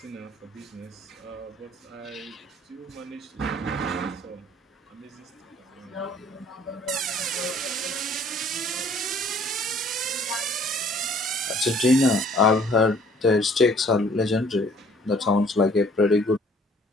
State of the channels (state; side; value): normal; both; correlation 0.57